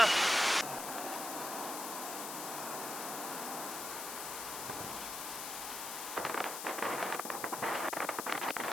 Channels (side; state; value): left; noise; hiss, 5 dB below the sound